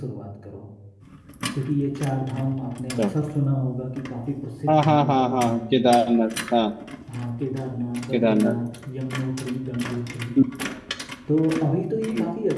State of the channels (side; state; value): both; identical; correlation 1.00